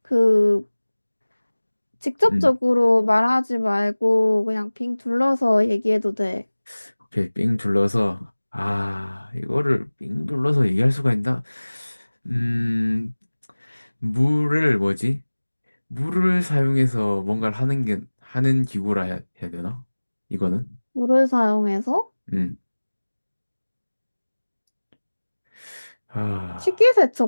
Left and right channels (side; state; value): both; inverted; correlation -1.00